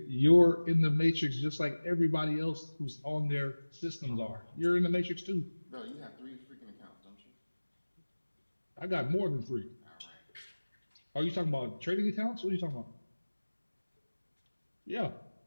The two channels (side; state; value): both; inverted; correlation -1.00